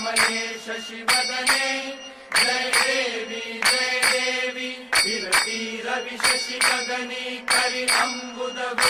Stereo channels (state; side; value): identical; both; correlation 1.00